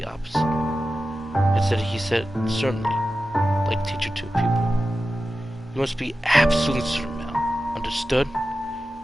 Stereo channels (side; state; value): both; normal; correlation 0.93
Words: opposite. Instead, he said, certainly, like teacher to a pupil. You must be absolutely certain, Mel. Understood?